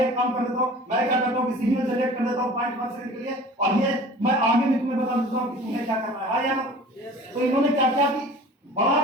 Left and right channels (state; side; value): normal; both; correlation 0.43